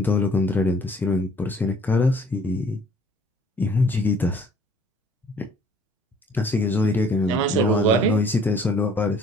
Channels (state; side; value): normal; both; correlation 0.55